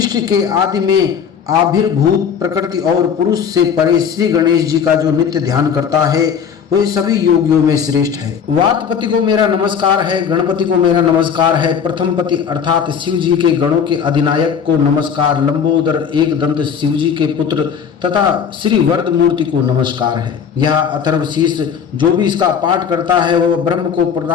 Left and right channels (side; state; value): right; quieter; 7.3 dB